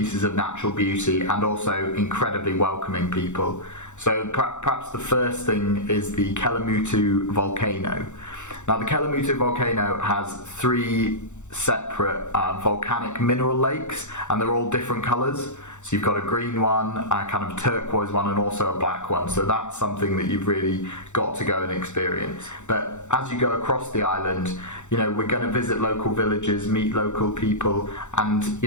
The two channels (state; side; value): late; right; 0.84 ms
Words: of natural beauty and also incredibly welcoming people. So perhaps the first thing is the Kelimutu Volcano. Now, the Kelimutu Volcano has 3 separate volcanic mineral lakes, and they're all different colours. So you've got a green one, a kind of turquoise one, and also a black one. So that's something that you've really got to go and experience. But as you go across the island, we're going to visit local villages, meet local people, and